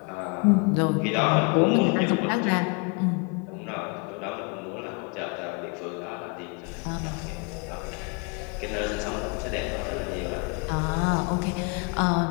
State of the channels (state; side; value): quieter; right; 33.3 dB